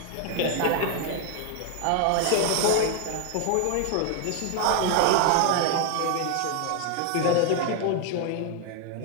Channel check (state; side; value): different; both; correlation 0.00